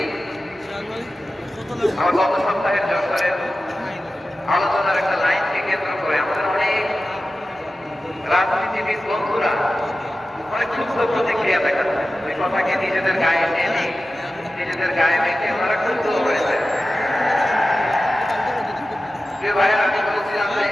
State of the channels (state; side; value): normal; both; correlation 0.94